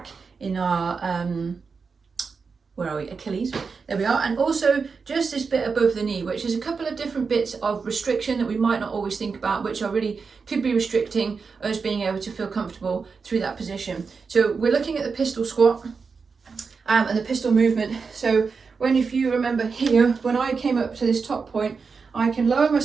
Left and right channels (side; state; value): left; quieter; 5.1 dB